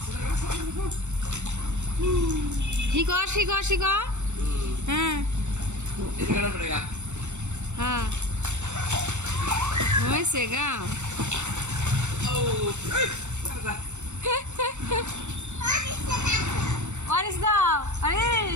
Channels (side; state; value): left; late; 0.84 ms